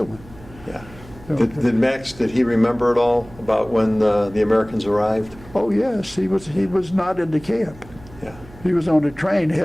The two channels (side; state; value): right; noise; hum, 20 dB below the sound